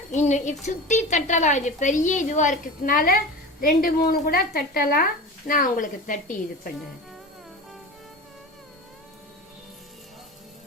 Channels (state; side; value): normal; both; correlation 0.31